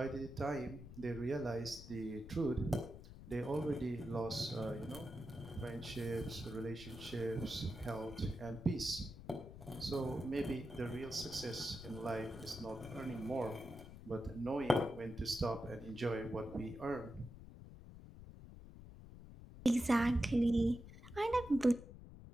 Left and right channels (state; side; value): noise; left; rumble, 14 dB below the sound